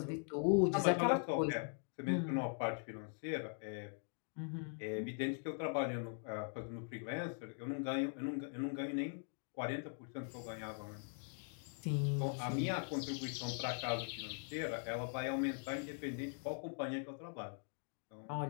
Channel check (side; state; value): right; silent; 50 dB below the other